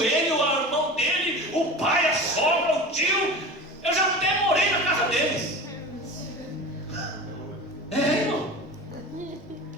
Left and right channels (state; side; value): normal; both; correlation 0.33